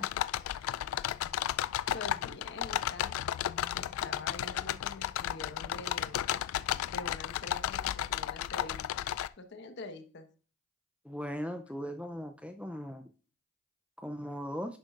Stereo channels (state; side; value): quieter; right; 8.7 dB